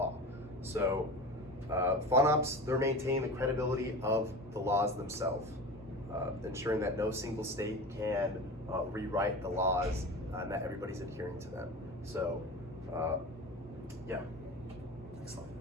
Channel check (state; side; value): normal; both; correlation 0.31